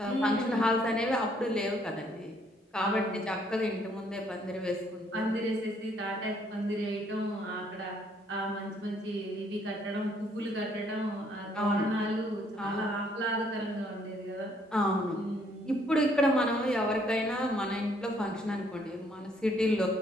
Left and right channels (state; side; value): normal; both; correlation 0.66